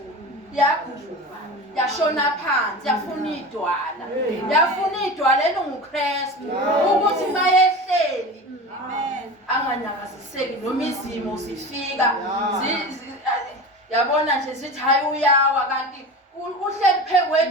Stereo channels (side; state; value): both; normal; correlation 0.31